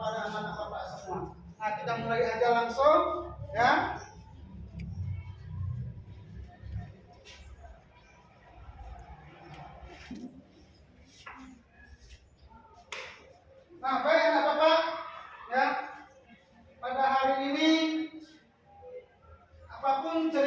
anak bapak semua. Nah, kita mulai aja langsung, ya. Nah, baik anak bapak, ya. Pada hari ini, apapun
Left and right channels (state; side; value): identical; both; correlation 1.00